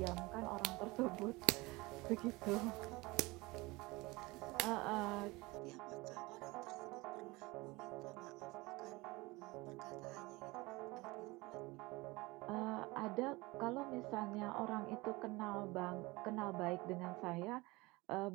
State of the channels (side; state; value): left; quieter; 22.8 dB